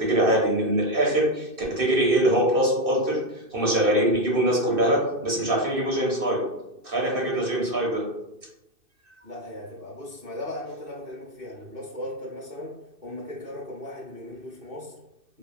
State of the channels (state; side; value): late; left; 2.6 ms